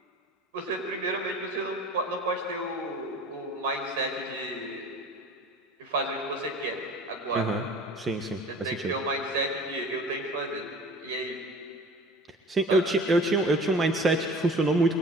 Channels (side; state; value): both; normal; correlation 0.42